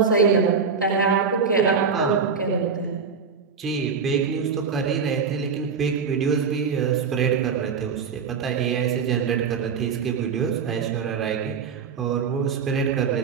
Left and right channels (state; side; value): quieter; left; 5.9 dB